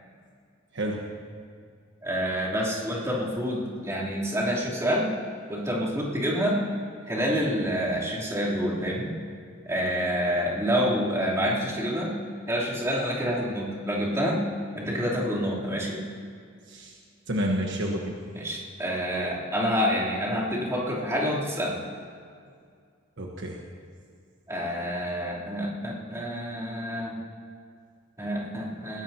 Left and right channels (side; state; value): both; normal; correlation 0.43